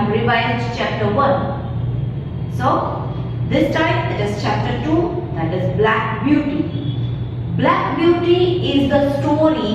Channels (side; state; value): both; identical; correlation 1.00